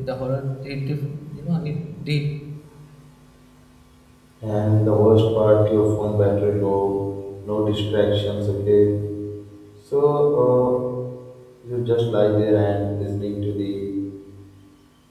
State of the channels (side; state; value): both; identical; correlation 1.00